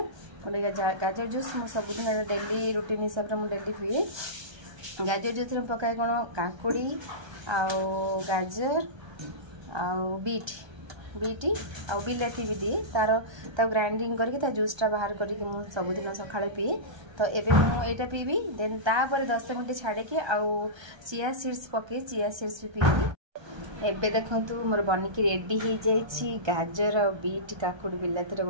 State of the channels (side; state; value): left; late; 1.3 ms